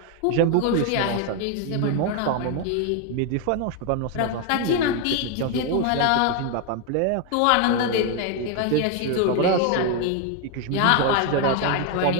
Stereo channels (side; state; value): both; different; correlation 0.01